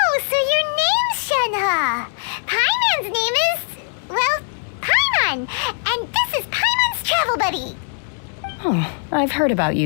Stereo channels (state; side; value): silent; right; 65 dB below the other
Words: so your name's Shenhe. Paimon's name is, well, Paimon. And this is Paimon's travel buddy. Oh, I've heard about